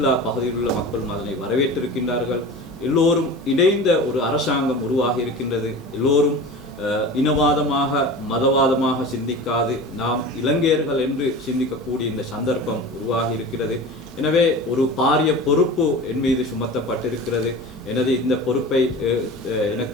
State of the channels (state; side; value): normal; both; correlation 0.34